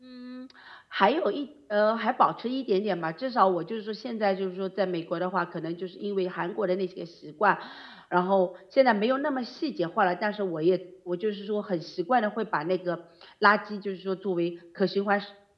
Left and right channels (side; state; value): both; identical; correlation 1.00